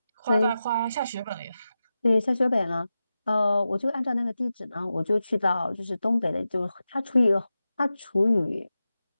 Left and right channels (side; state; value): both; inverted; correlation -0.92